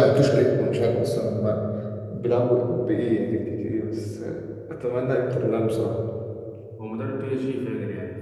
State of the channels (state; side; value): identical; both; correlation 1.00